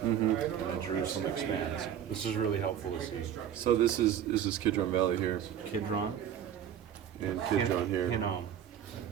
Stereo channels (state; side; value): quieter; left; 9.6 dB